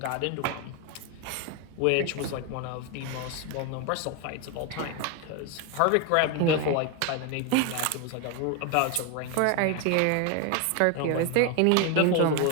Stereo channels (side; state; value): both; different; correlation 0.01